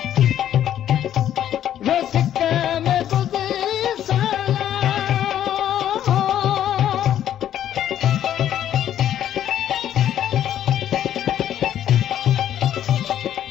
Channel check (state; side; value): quieter; right; 10.9 dB